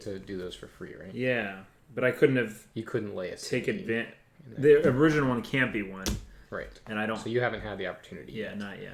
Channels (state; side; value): identical; both; correlation 1.00